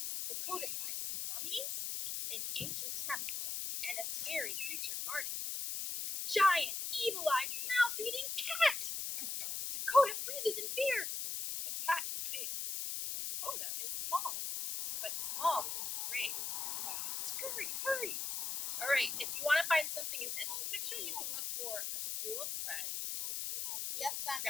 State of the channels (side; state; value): left; noise; hiss, 2 dB below the sound